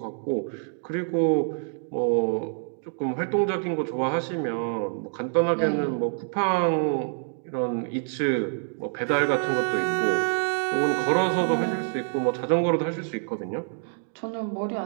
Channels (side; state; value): left; silent; digital silence